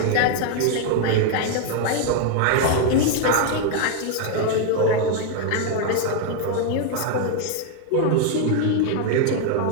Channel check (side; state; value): both; different; correlation 0.00